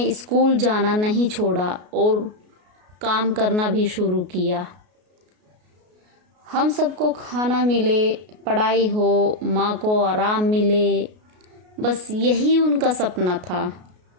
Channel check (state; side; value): late; left; 33 ms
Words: स्कूल जाना नहीं छोड़ा और काम करना भी शुरू किया। हम सबको खाना मिले, पढ़ाई हो, माँ को आराम मिले, बस यही उनका सपना था।